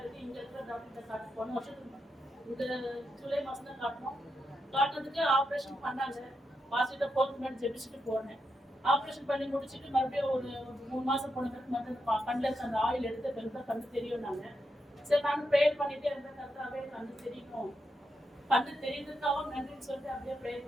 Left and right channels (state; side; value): normal; both; correlation 0.84